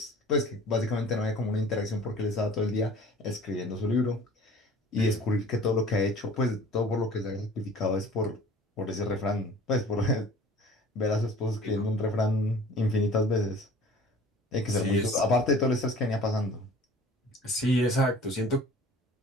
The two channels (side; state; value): both; normal; correlation 0.47